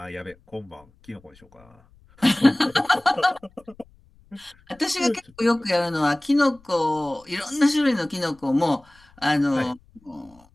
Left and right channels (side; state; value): left; noise; rumble, 29 dB below the sound